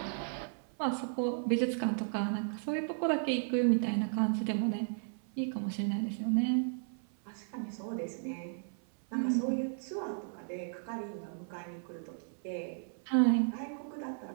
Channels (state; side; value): silent; left; 55 dB below the other